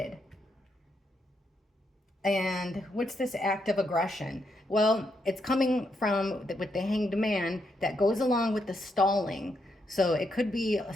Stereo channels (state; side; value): normal; both; correlation 0.79